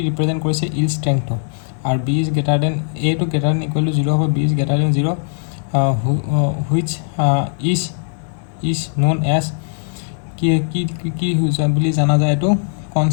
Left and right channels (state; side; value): silent; right; digital silence